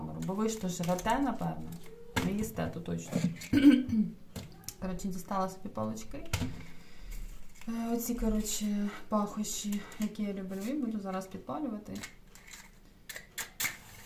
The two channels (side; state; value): both; identical; correlation 1.00